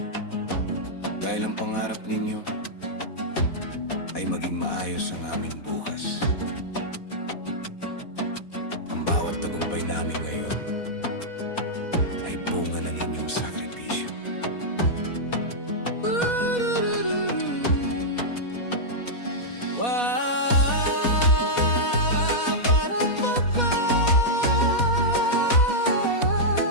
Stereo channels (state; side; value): late; right; 4.1 ms